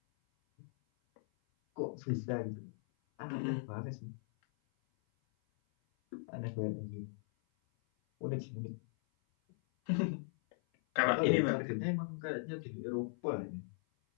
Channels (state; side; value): silent; right; 52 dB below the other